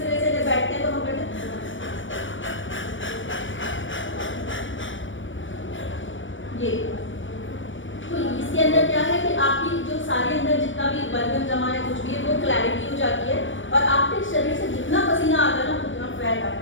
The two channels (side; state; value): right; late; 0.56 ms